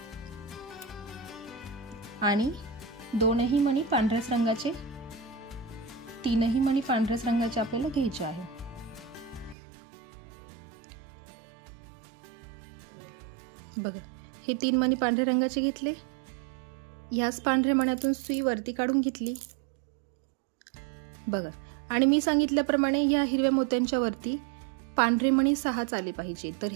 आणि 2ही मणी पांढऱ्याच रंगाचे, 3ही मणी पांढऱ्याच रंगाचे आपल्याला घ्यायचे आहे. बघा, हे 3 मणी पांढऱ्या रंगाचे घेतले. ह्याच पांढऱ्या मण्यातून सुई वरती काढून घेतली. बघा, आणि मी सांगितल्याप्रमाणे या हिरव्या मोत्यांच्या वरती पांढरे मणी 6च आले पाहिजे. तर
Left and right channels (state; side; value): drops out; left; at 9.6 s